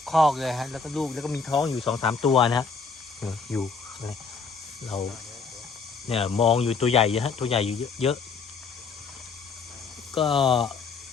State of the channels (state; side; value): quieter; right; 4.9 dB